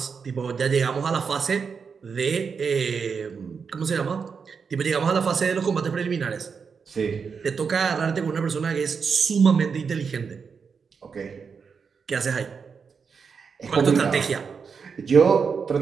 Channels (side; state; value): left; quieter; 5.8 dB